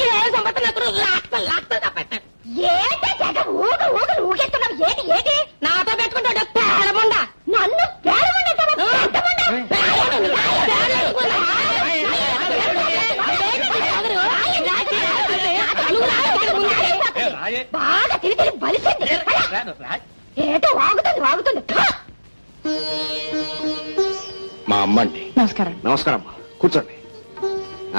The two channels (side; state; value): both; inverted; correlation -1.00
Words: ఏలు సంపాదిస్తే నా కొడుకు లాక్తా తప్పెట్టాడు. ఏంటి జగ ఊగలు ఊగెత్తున్నావు? ఏంటి ఏంటి నాతో పెట్టుకుంటాడు పేడముండా? నన్ను బాగా తిరిగి బలిసింది. ఏటో వాగుతుంది. మా అమ్మ అండి. నమస్కారం. నమస్కారం అమ్మా, కూర్చోండి.